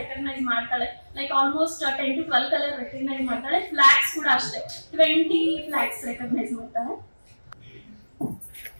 ಮಾಡ್ತಾಳೆ. Like almost 10 to 12 colour recognise ಮಾಡ್ತಾಳೆ. ಫ್ಲಾಗ್ಸ್ ಕೂಡ ಅಷ್ಟೇ 20 ಫ್ಲಾಗ್ಸ್ ರೆಕಗ್ನೈಸ್ ಮಾಡ್ತಾಳೆ.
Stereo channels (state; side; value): inverted; both; correlation -1.00